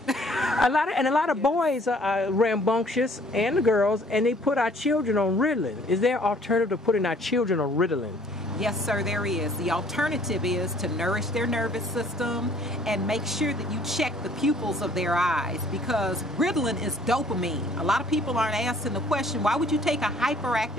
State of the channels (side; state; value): both; normal; correlation 0.58